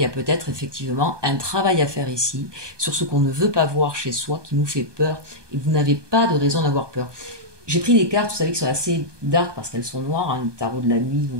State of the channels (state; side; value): late; left; 1.2 ms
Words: y a peut-être effectivement un travail à faire ici sur ce qu'on ne veut pas voir chez soi, qui nous fait peur, et vous n'avez pas de raison d'avoir peur. J'ai pris des cartes, vous savez, qui sont assez dark parce qu'elles sont noires, hein, le tarot de la nuit,